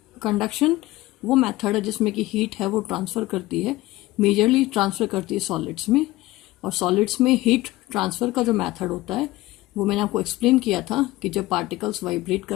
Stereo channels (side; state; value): right; quieter; 18.2 dB